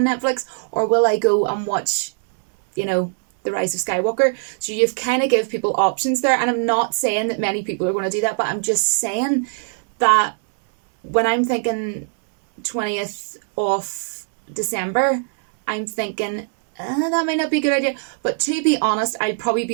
Netflix, or will I go and watch, the Rise of Skywalker? So you've kind of give people options there, and I'm not saying that many people are going to do that, but I'm just saying that when I'm thinking 20th of December, I'm thinking that might not be a good idea. But to be honest, I'd probably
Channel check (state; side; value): silent; left; 65 dB below the other